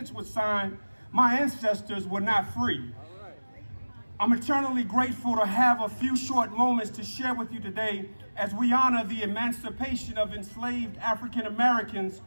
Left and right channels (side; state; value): both; inverted; correlation -1.00